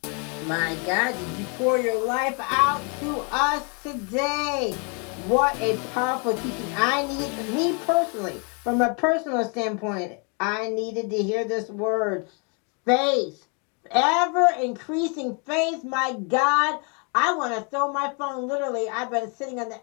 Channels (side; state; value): right; quieter; 36.1 dB